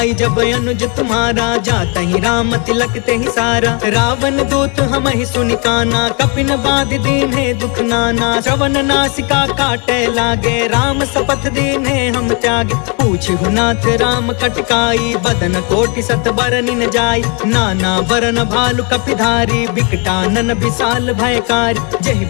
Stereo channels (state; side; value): quieter; right; 34.1 dB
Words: जब अनुज तुम्हारा जाता ही राम तिलक ते ही सारा रावण दूत हम ही सुनि काना कपिन बाध दीन है दुख नाना श्रवण नासिका काटे लागे राम शपथ दीन है हम त्यागे पूछहु नाथ राम कटकाई बदन कोटि सत बरनि न जाई नाना बरन भालु कपिधारी बिकटानन विशाल भयकारी